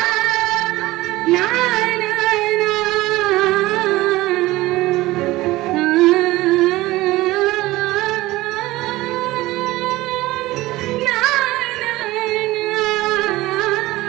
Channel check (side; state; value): left; quieter; 18.4 dB